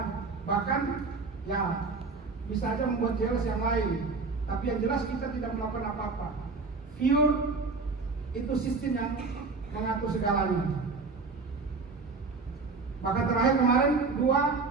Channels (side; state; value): left; quieter; 4.1 dB